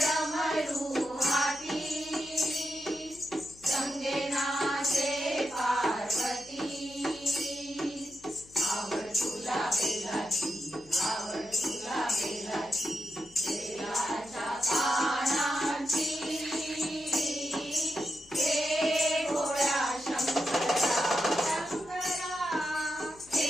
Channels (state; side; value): noise; left; hum, 24 dB below the sound